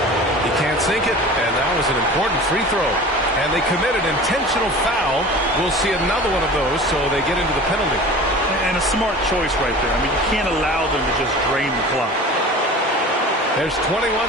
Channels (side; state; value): both; normal; correlation 0.38